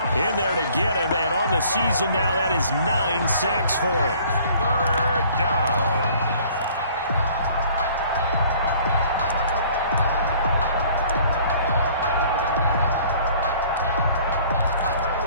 in there to get him. And on the season now, that is 9 sacks for him. 3rd down.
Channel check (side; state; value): both; inverted; correlation -0.54